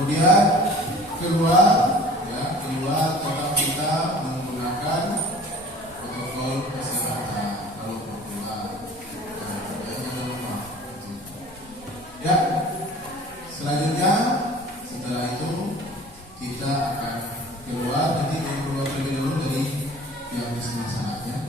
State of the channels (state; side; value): normal; both; correlation 0.46